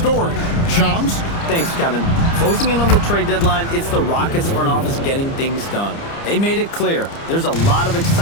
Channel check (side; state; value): right; late; 30 ms